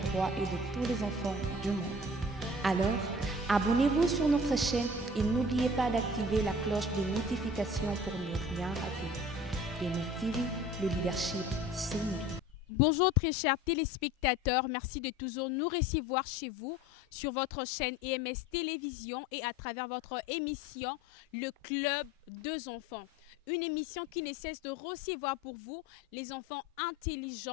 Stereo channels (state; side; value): normal; both; correlation 0.44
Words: droits et de tous les enfants du monde. Alors, abonnez-vous sur notre chaîne et n'oubliez pas d'activer la cloche de notification pour ne rien rater. MS TV, le leadership, c'est nous. Bonjour très chers téléspectateurs, merci de toujours nous recevoir chez vous sur votre chaîne EMS Télévision et à travers votre émission Le Club des enfants. Une émission qui ne cesse de recevoir pour vous les enfants